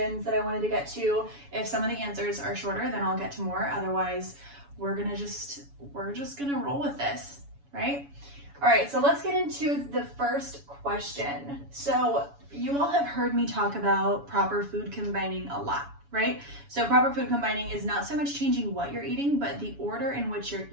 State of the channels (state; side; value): late; left; 7.1 ms